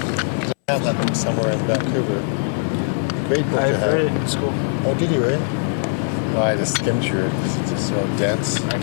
I have that book somewhere in Vancouver. Great book to I've have. read it in school. Oh, did you really? Well, I just skimmed through it because it's just so dense. I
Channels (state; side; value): silent; right; 65 dB below the other